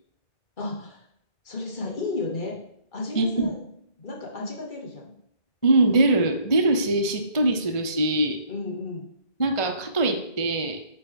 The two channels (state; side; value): late; right; 1.5 ms